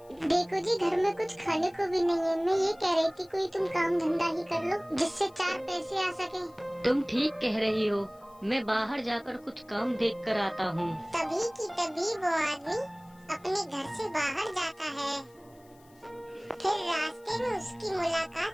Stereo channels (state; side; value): noise; left; hiss, 30 dB below the sound